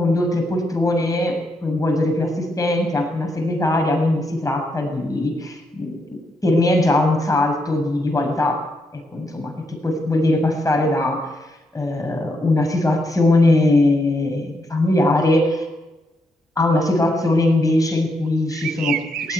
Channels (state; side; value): normal; both; correlation 0.79